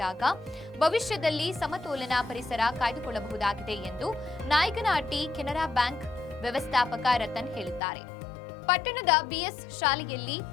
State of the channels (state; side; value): drops out; right; at 7.8 s